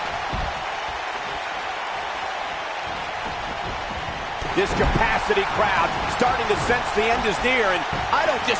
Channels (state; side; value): identical; both; correlation 1.00